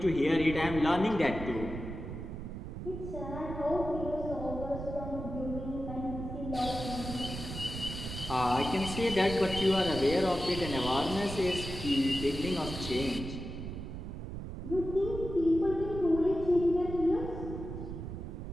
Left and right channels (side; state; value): right; noise; rumble, 8 dB below the sound